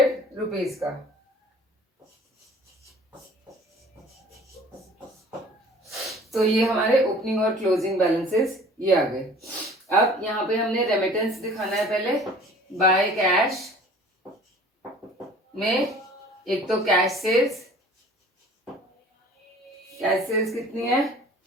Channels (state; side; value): normal; both; correlation 0.48